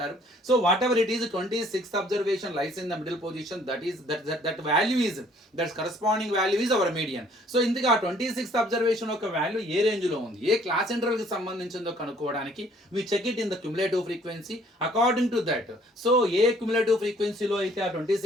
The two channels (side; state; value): both; normal; correlation 0.60